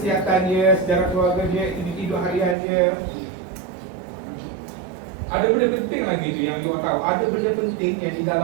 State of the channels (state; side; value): drops out; left; at 2.6 s